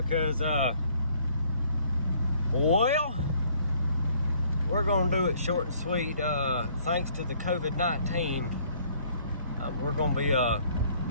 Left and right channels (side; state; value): both; inverted; correlation -0.62